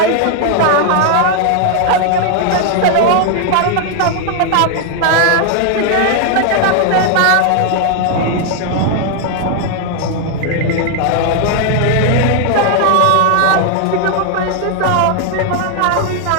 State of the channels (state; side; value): different; both; correlation 0.00